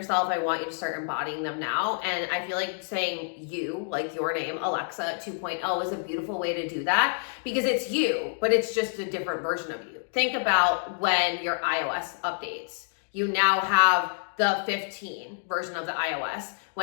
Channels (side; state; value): right; silent; digital silence